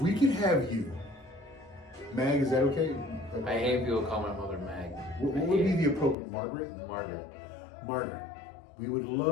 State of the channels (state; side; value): drops out; right; at 6.2 s